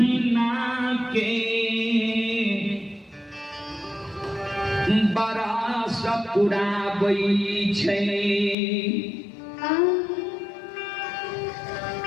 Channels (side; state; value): right; drops out; at 8.6 s